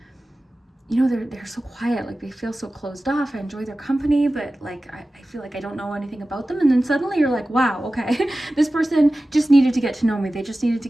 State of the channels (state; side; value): normal; both; correlation 0.96